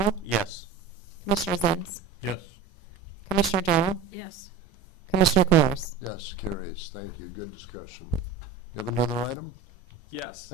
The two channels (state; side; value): quieter; left; 6.3 dB